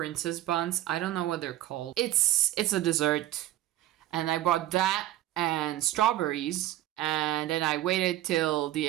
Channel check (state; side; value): quieter; left; 14.1 dB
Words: buns. I don't know what they're called. It's a dessert. And I bought that and strawberries. And then I waited till the